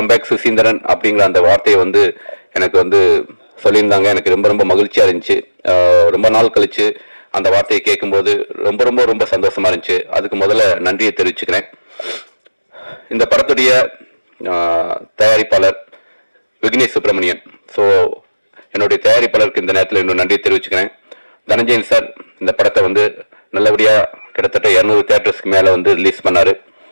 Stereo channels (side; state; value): both; inverted; correlation -1.00